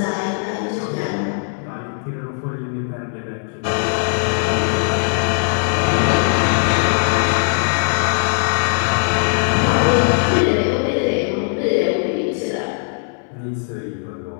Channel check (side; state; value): right; silent; 64 dB below the other